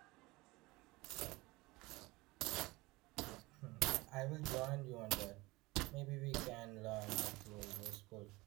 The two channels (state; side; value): quieter; left; 21.8 dB